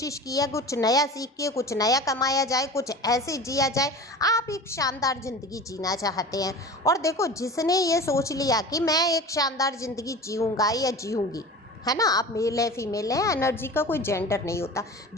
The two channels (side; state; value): both; normal; correlation 0.35